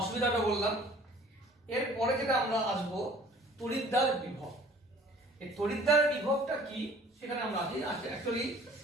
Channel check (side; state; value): both; normal; correlation 0.51